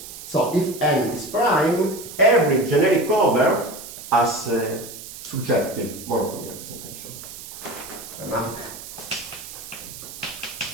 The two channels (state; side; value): noise; right; hiss, 13 dB below the sound